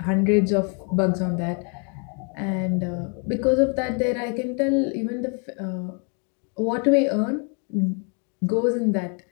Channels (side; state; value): right; quieter; 38.2 dB